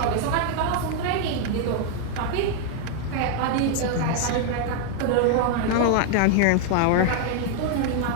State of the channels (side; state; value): both; different; correlation 0.00